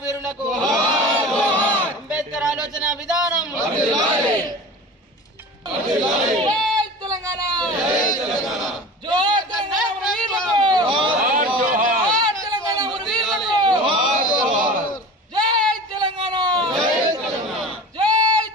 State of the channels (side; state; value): both; normal; correlation 0.36